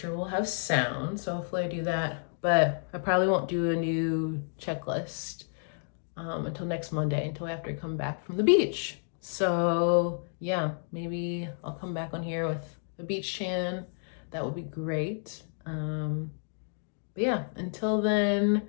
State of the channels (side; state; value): right; silent; digital silence